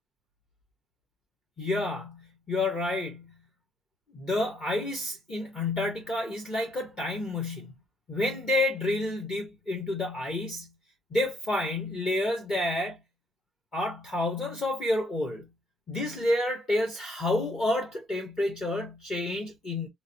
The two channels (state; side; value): normal; both; correlation 0.70